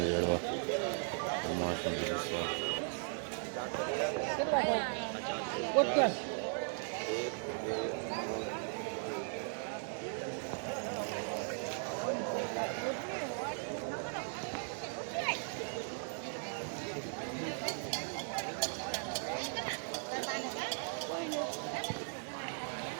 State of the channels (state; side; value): silent; left; 53 dB below the other